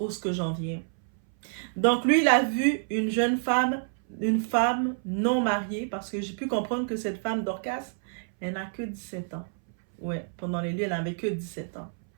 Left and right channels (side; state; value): left; silent; 59 dB below the other